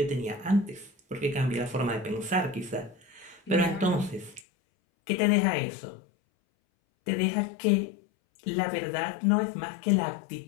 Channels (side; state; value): right; drops out; at 4.4 s